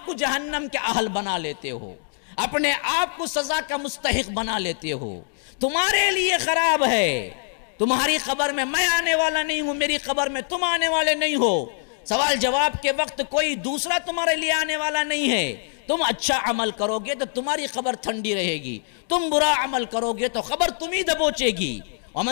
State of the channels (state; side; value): silent; right; digital silence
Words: کو جہنم کے اہل بنا لیتے ہو، اپنے آپ کو سزا کا مستحق بنا لیتے ہو. تمہارے لیے خراب ہے. تمہاری قبر میں میں آنے والا نہیں ہوں، میری قبر میں تم آنے والے نہیں ہو. سوال جواب کے وقت کوئی دوسرا تمہارے لیے آنے والا نہیں ہے. تم اچھا عمل کرو گے تو تمہاری قبر ٹھنڈی رہے گی، تم برا عمل کرو گے تو قبر تمہیں دبوچے گی.